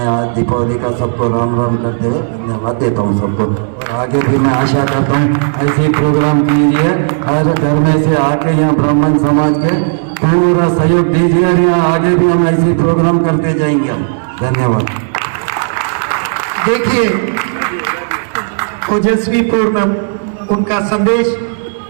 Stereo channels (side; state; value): left; silent; digital silence